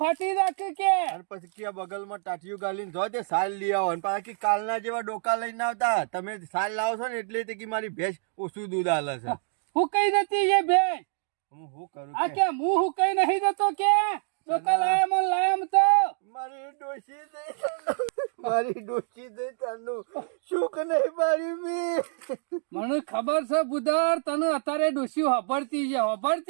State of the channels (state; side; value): silent; left; digital silence